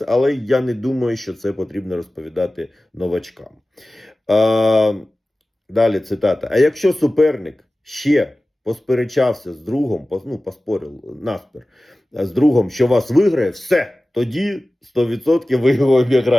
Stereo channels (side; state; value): both; normal; correlation 0.96